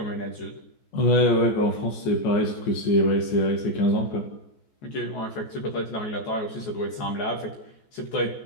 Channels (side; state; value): right; late; 14 ms